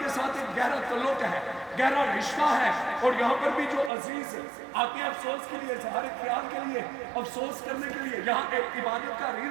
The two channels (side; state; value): left; drops out; at 3.9 s